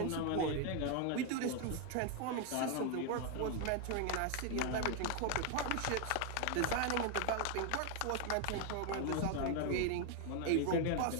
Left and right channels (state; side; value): different; both; correlation 0.01